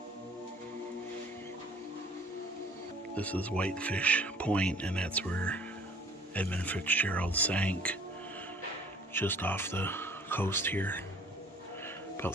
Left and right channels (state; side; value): normal; both; correlation 0.53